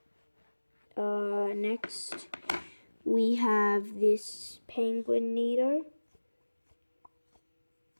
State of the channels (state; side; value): inverted; both; correlation -1.00